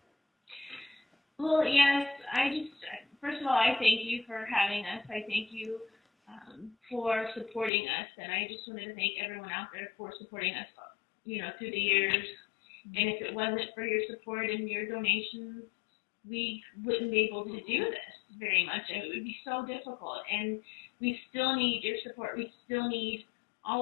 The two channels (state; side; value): drops out; right; at 7.7 s